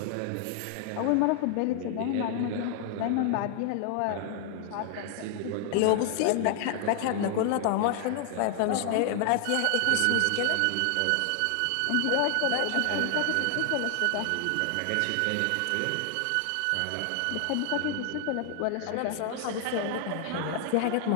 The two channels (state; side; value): different; both; correlation 0.00